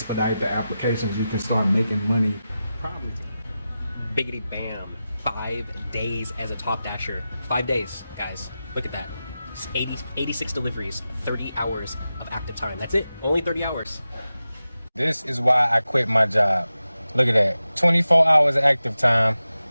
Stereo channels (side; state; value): both; inverted; correlation -0.93